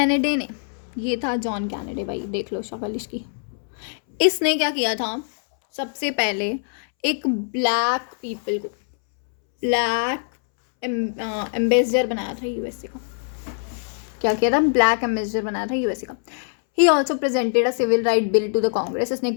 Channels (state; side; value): silent; right; 63 dB below the other